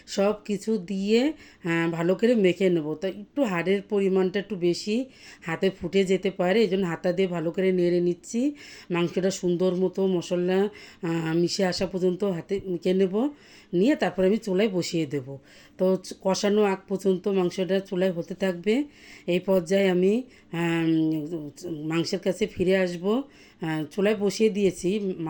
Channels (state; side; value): identical; both; correlation 1.00